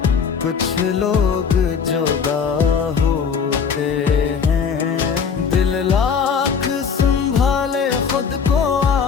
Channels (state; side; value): quieter; right; 6.3 dB